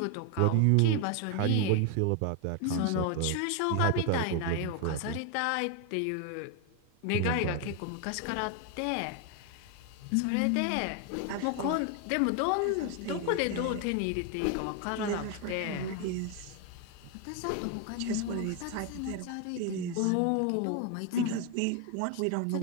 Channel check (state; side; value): different; both; correlation 0.01